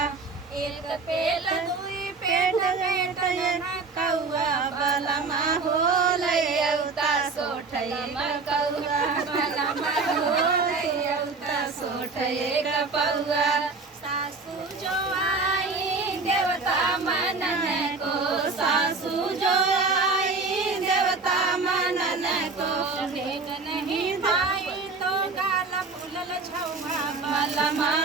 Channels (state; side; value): quieter; left; 4.1 dB